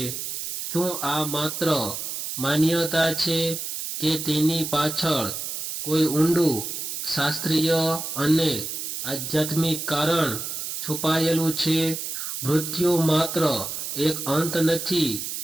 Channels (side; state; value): right; noise; hiss, 5 dB below the sound